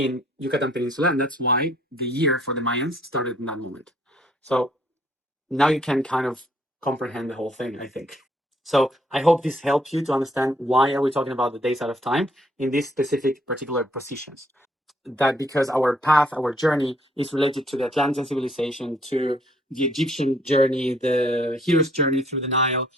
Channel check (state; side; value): normal; both; correlation 0.66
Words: Yucatan Peninsula, and that's why the year for the Mayans started in that moment. So now you can kind of comprehend the whole thing, I think. So I hope this helps you to understand why are we talking about the days out of time in these specific particular positions. That because our path, our journey is related to the Atlantean civilization, to the Egyptian journey, the hero's journey through the Nile,